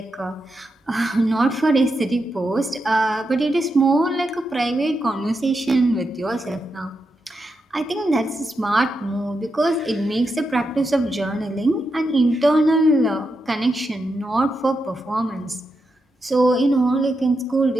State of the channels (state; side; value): normal; both; correlation 0.86